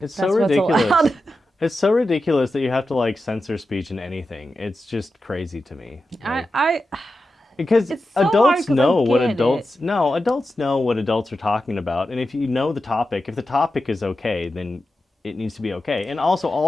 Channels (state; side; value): normal; both; correlation 0.91